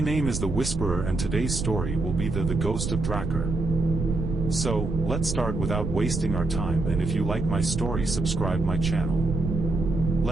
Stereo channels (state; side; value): noise; right; rumble, 3 dB below the sound